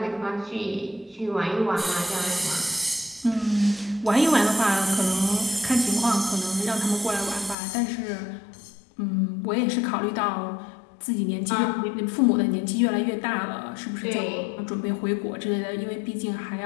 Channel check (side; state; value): right; drops out; at 7.6 s